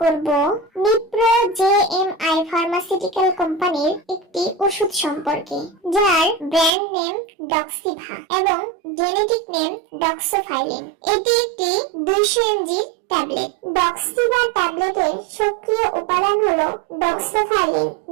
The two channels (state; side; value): drops out; left; at 6.7 s